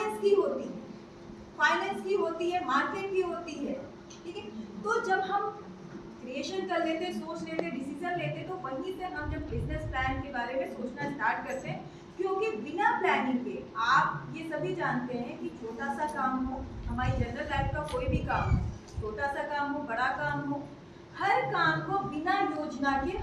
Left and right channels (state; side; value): identical; both; correlation 1.00